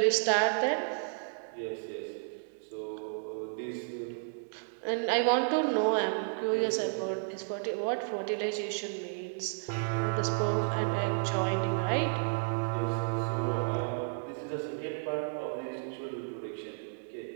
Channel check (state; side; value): silent; left; digital silence